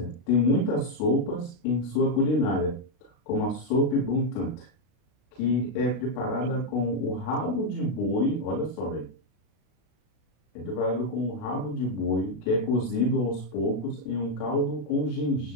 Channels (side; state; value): right; late; 32 ms